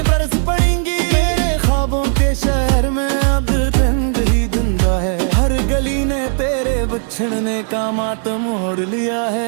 बरस पड़ेंगी। मेरे ख्वाबों के शहर में अब रंग ही धुंधला है, हर गली ने तेरे बिछड़ने का मातम ओढ़ लिया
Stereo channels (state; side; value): silent; left; 58 dB below the other